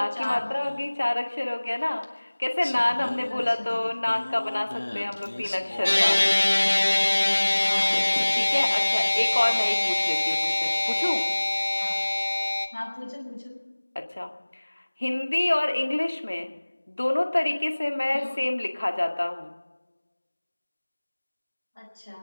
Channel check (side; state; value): both; inverted; correlation -1.00